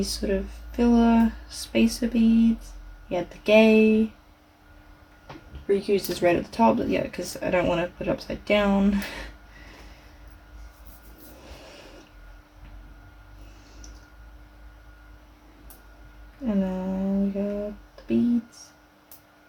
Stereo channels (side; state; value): both; identical; correlation 1.00